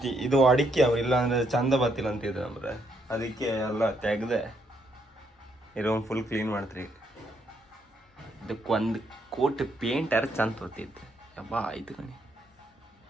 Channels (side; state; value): both; normal; correlation 0.74